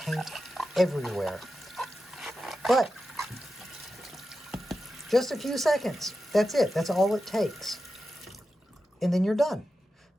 everywhere. But just a few seconds. That's it. That's all it takes. And then you're done.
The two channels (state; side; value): normal; both; correlation 0.91